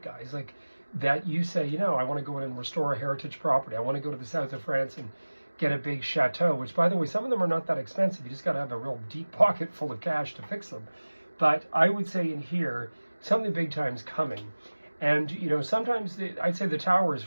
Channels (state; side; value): inverted; both; correlation -1.00